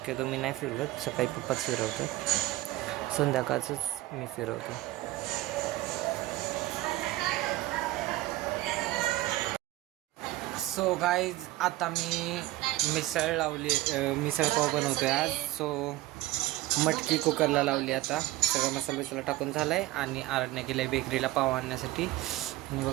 मी नाही फिरवत, सकाळी पप्पाच फिरवतात, संध्याकाळचंच मी फिरवतो. सो गाईज आता मी मिसळ लावली, मिसळ पाव बनवतो आहे आज. सो मटकी कुकरला लावली. आता सगळं मसाला टाकून झाला आहे. आणि आरडण्या केलं आहे बेकरीला पाव आणण्यासाठी. आणि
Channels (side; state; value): left; quieter; 17.4 dB